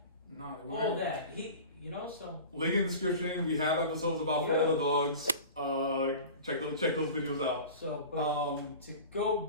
all that. So link in the description. We have episodes about For All the Dogs. Check those videos out. So, but to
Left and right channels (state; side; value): inverted; both; correlation -0.37